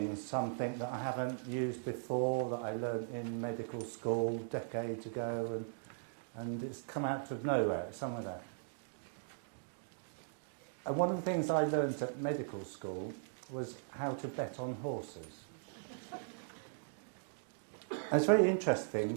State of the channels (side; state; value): left; silent; digital silence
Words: something that I haven't used before, that I learned in medical school decades ago, and it's come out of nowhere, some of that. And one of the things I learned at medical school was how to bet on horses. And it's very